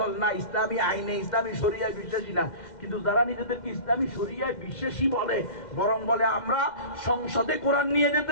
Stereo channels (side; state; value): right; late; 2.1 ms